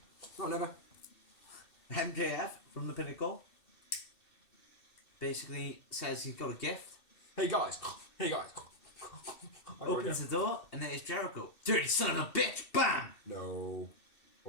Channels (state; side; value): late; right; 2.6 ms